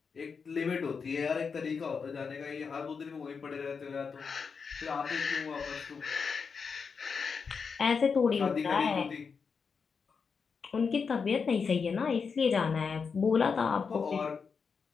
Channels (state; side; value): quieter; right; 5.6 dB